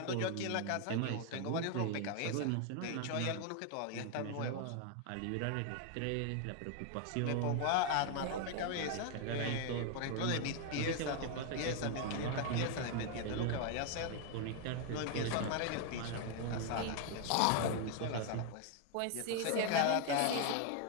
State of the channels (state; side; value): different; both; correlation 0.00